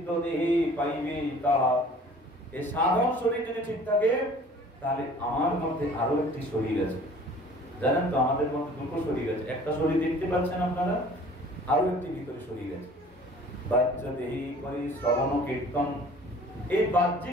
দেহে পাইবে তাহা। এই সাধন শরীর যদি ঠিক থাকে তাহলে আমার মধ্যে আরো একটি শরীর আছে। জানেন তো আমাদের মধ্যে দুটো শরীর আছে, একটা শরীর দেখতে পাচ্ছেন আপনারা, আরো একটি ভিতরে শরীর আছে। বাহ্য দেহি করি শ্রবণ কীর্তন, এই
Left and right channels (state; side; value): normal; both; correlation 0.49